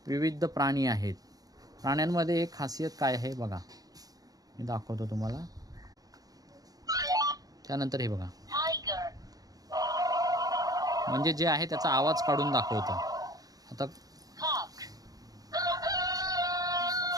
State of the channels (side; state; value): left; late; 0.18 ms